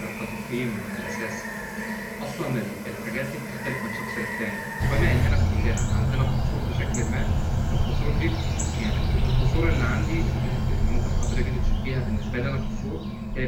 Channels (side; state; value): both; identical; correlation 1.00